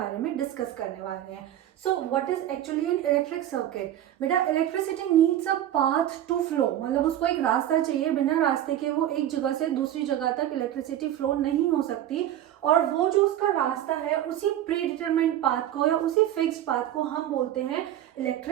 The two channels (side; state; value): left; quieter; 12.0 dB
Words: में discuss करने वाले हैं. So what is actually an electric circuit? बेटा, electricity needs a path to flow, मतलब उसको एक रास्ता चाहिए. बिना रास्ते के वो एक जगह से दूसरी जगह तक इलेक्ट्रिसिटी फ्लो नहीं हो सकती. और वो जो उसका रास्ता है, उसी प्री डिटरमाइंड पाथ को या उसी फिक्स्ड पाथ को हम बोलते हैं